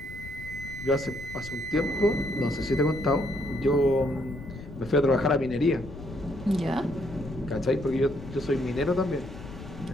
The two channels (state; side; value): noise; left; rumble, 13 dB below the sound